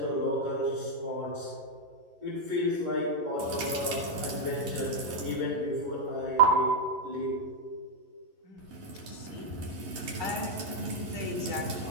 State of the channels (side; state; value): left; late; 11 ms